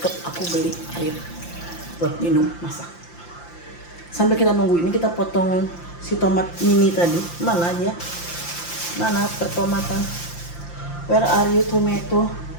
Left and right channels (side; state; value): right; late; 5.8 ms